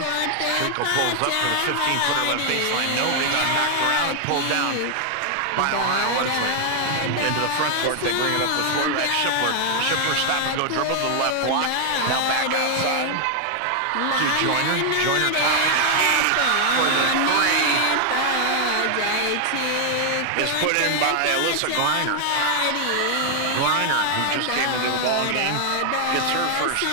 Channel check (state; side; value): different; both; correlation 0.00